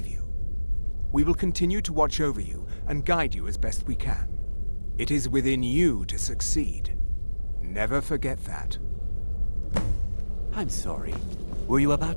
you. We will continue to watch over you and guide you as best we can. It is within you to succeed. Never forget that. I'm sorry. Were you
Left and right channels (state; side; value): inverted; both; correlation -1.00